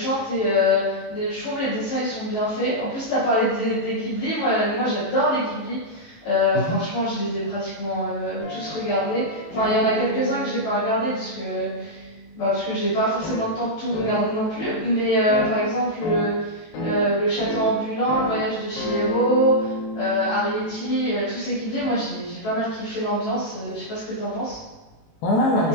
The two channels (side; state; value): right; late; 19 ms